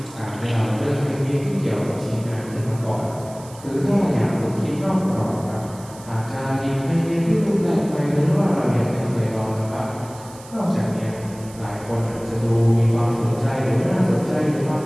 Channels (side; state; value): right; noise; hiss, 20 dB below the sound